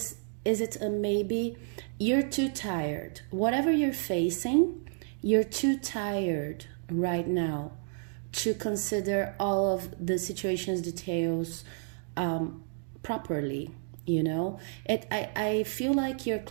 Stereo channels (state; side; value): silent; left; 57 dB below the other